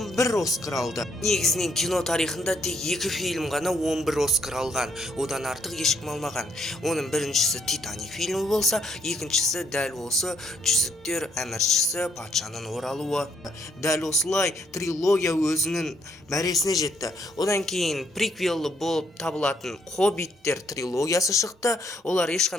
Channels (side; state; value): both; normal; correlation 0.71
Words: Оскар алды. Негізінен кино тарихында тек 2 фильм ғана 11 Оскар алған. Одан артық ешкім алмаған. Оның біріншісі Титаник фильмі болса, екіншісі дәл осы жүзіктер әміршісі патшаның оралуы. Дәл осылай трилогия өзінің мәресіне жетті. Одан кейін приквелі болып табылатын Хоббиттер трилогиясы шықты. Олар